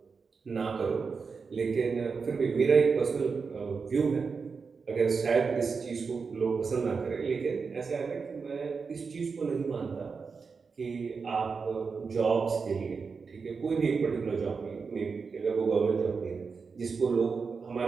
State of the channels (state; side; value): quieter; left; 5.1 dB